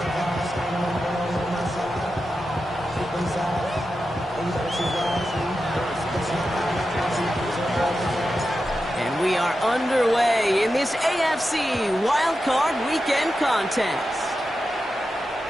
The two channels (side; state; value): both; normal; correlation 0.90